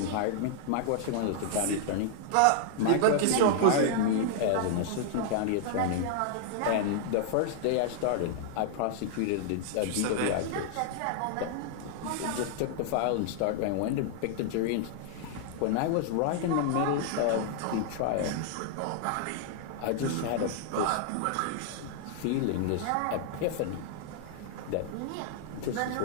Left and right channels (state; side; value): different; both; correlation -0.01